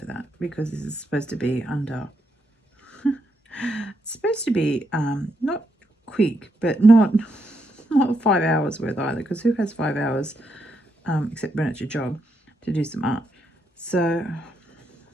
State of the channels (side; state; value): both; normal; correlation 0.80